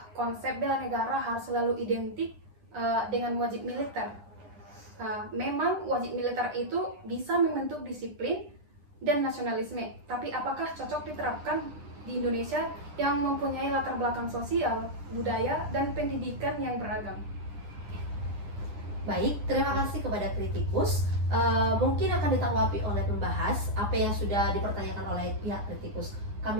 konsep bela negara harus selalu identik dengan wajib militer? Memang wajib militer itu bisa membentuk disiplin dan nasionalisme, tapi apakah cocok diterapkan di Indonesia yang mempunyai latar belakang sosial, budaya, dan pendidikan yang beragam? Baik, terima kasih kepada kritikus. Mungkin akan ditanggapi oleh pembahas apa yang sudah dipertanyakan oleh pihak kritikus.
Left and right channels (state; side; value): late; left; 9.8 ms